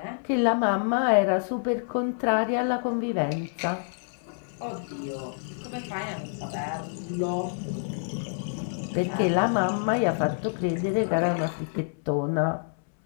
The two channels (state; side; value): silent; right; 60 dB below the other